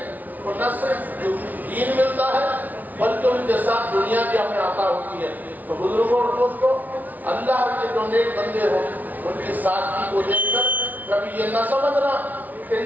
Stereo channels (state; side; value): late; left; 0.079 ms